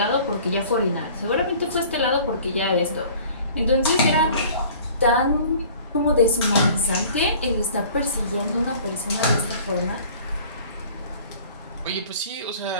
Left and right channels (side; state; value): both; inverted; correlation -0.48